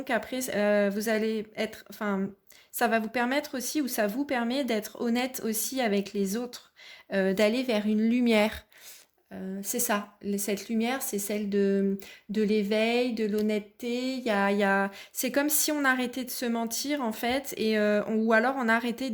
après, vous allez être, enfin, ça va vous permettre aussi, ou ça vous permet d'être honnête aussi avec les autres, d'aller vers une lumière. C'est ça, cette lumière, c'est celle de l'éveil, de l'honnêteté. C'est comme si on arrêtait de se mentir en fait, ou alors on arrêtait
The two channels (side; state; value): both; identical; correlation 1.00